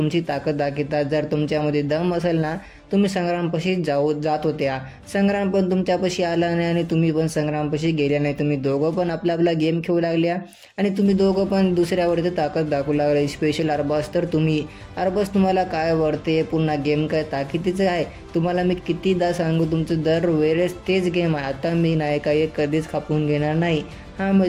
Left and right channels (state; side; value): identical; both; correlation 1.00